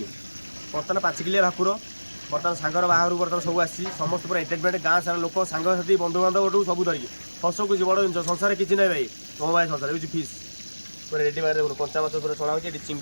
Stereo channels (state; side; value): inverted; both; correlation -1.00